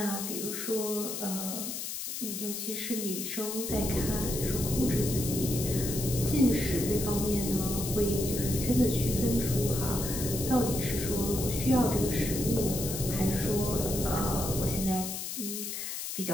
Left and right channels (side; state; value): left; noise; hiss, 5 dB below the sound